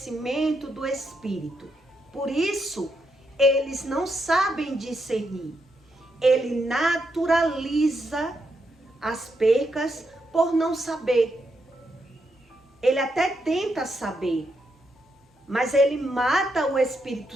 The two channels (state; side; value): normal; both; correlation 0.81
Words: do Espírito. Por isso, eles não sabem discernir. Ele naturaliza as percas por não saber. Ele até tenta saber, mas ele mata o Espírito